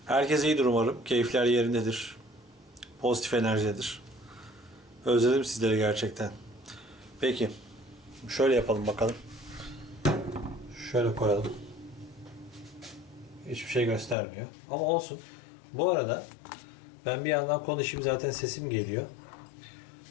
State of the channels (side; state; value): right; drops out; at 14.2 s